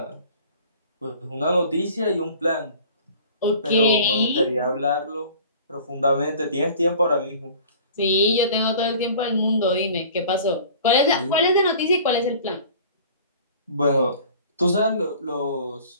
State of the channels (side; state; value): both; inverted; correlation -0.46